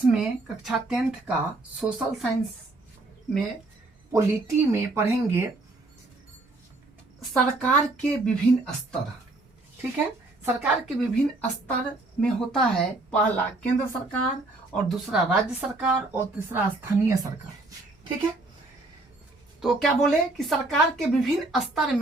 में कक्षा 10th का सोशल साइंस में पॉलिटी में पढ़ेंगे सरकार के विभिन्न स्तर। ठीक है, सरकार के विभिन्न स्तर में होता है पहला केंद्र सरकार और दूसरा राज्य सरकार और तीसरा स्थानीय सरकार। ठीक है, तो क्या बोले कि सरकार के विभिन्न स्तर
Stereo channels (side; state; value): left; quieter; 3.0 dB